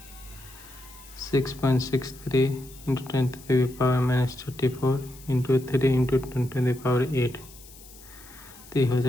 6.63 इंटू 10⁻⁻34 इंटू 3 इंटू 10⁸। तो हो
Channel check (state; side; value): noise; left; hiss, 20 dB below the sound